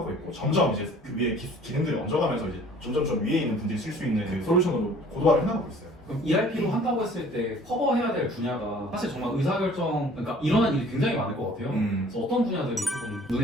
있고 점점 이제 그 위에 기능들이 얹어가면서 이제 점점 위에 있는 분들이 쓸 수 있는 그 솔루션으로 고도화를 해나가고 있어요. 그럼 ERP로 한다고 했을 때 커버해야 될 분야가 사실 정말 의사결정, 그러니까 일어난 일이 굉장히 많을 것 같아요. 그래서 어떤 분야들이 조금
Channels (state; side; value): normal; both; correlation 0.52